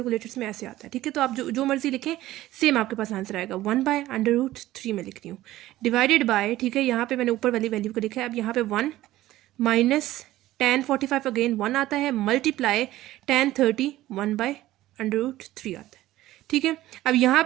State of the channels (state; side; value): quieter; left; 15.6 dB